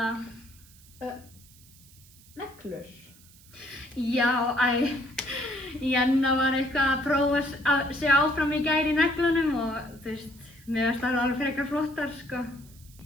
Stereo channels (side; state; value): right; noise; hiss, 24 dB below the sound